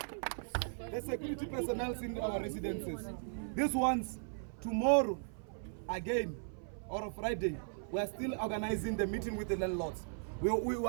The security personnel in our residences. These ones, tomorrow, again, or Friday, we are still organizing the meeting with the landlords. We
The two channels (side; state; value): left; silent; 53 dB below the other